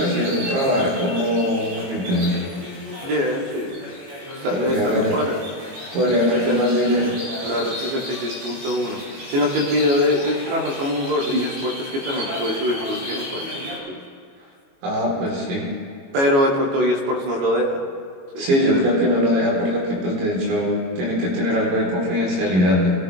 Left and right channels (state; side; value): late; left; 21 ms